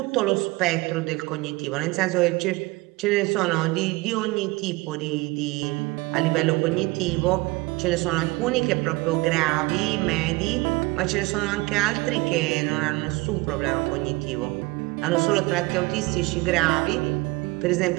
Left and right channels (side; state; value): left; quieter; 23.1 dB